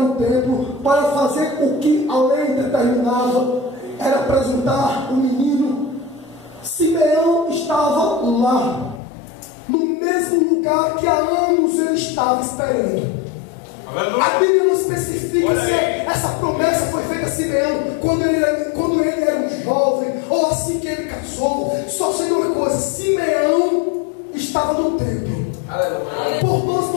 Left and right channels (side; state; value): right; drops out; at 9.0 s